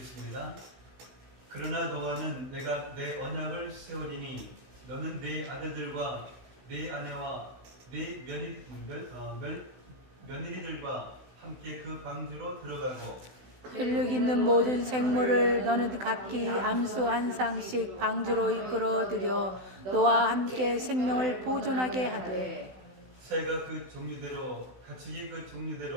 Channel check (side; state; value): left; late; 16 ms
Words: 그러나 너와는 내가 내 언약을 세우리니 너는 네 아들들과 네 아내와 네 며느리들과 함께 그 방주로 들어가고 근력 있는 모든 생물을 너는 각기 암수 한 쌍씩 방주로 이끌어들여 너와 함께 생명을 보존하게 하되 새가 그 종류대로 가축이 그